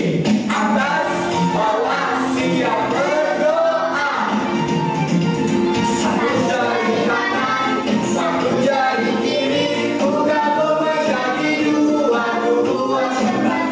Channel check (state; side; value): identical; both; correlation 1.00